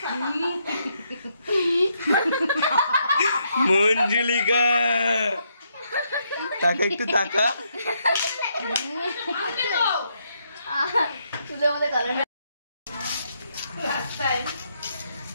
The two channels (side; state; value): both; inverted; correlation -0.76